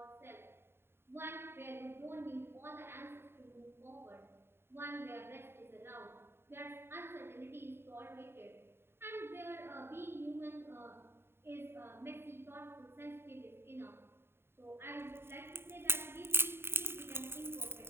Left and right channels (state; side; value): late; left; 0.11 ms